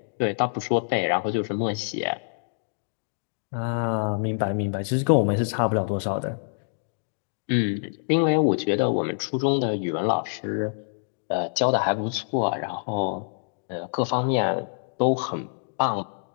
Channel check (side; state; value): right; silent; digital silence